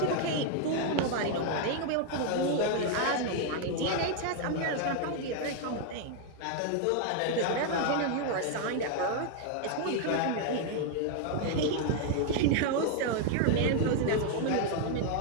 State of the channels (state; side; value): different; both; correlation 0.00